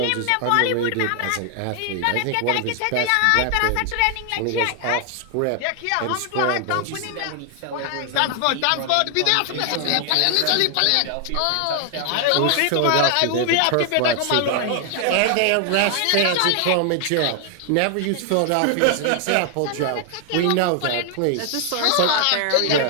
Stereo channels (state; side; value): different; both; correlation 0.00